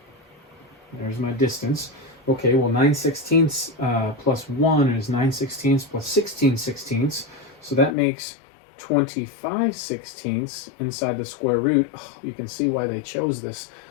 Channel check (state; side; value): drops out; right; at 8.0 s